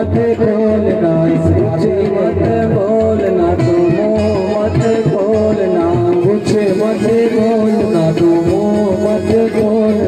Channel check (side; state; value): right; noise; hum, 28 dB below the sound